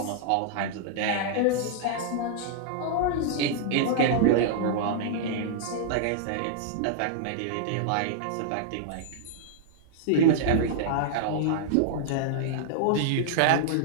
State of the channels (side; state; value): both; different; correlation -0.01